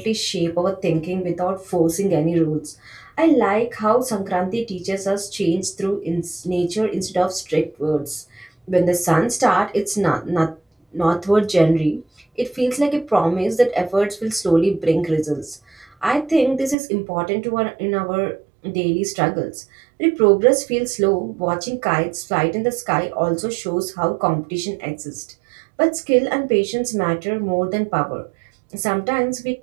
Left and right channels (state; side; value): drops out; left; at 16.8 s